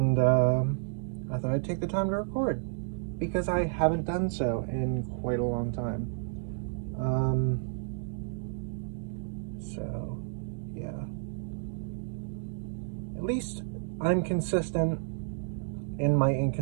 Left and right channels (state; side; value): silent; left; 57 dB below the other